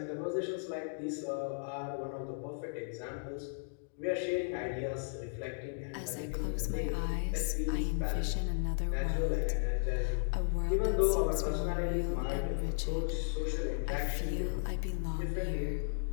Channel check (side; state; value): right; silent; digital silence